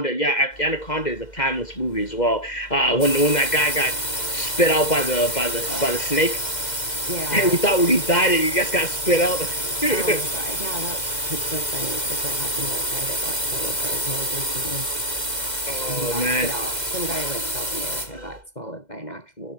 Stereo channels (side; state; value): right; late; 2.0 ms